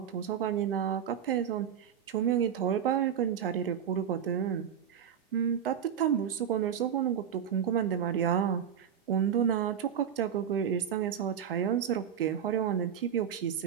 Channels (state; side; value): quieter; left; 8.5 dB